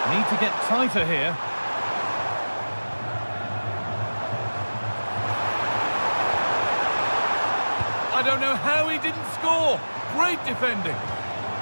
Need to get tighter here. I don't know how he didn't score. Great defending.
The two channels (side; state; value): both; inverted; correlation -1.00